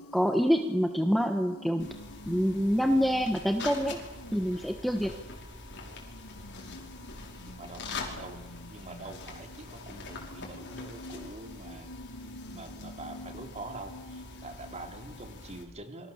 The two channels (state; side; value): normal; both; correlation 0.89